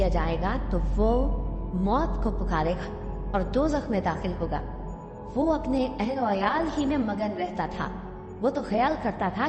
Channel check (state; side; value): identical; both; correlation 1.00